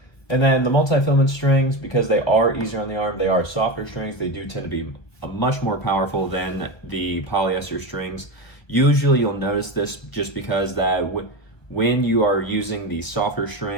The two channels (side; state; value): right; late; 1.3 ms